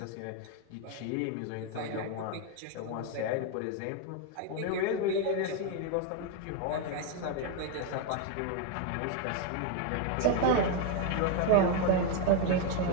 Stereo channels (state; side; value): different; both; correlation 0.01